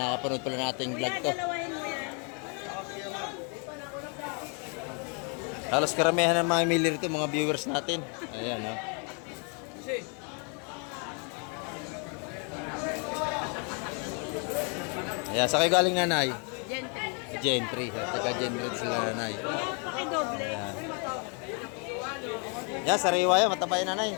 pala nating vlog Kuya, to. dalawahin mo yan. Halos karamihan ng mga mili rito, mga viewers natin. Ayan, no? Ayan, sa kayo galing nanay? Gentry. Gentry. Taga Gentry sila nanay. Kuya, pakidoble. Ayan. Yan, sariwa yan. Mataba yan nanay.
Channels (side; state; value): right; quieter; 37.2 dB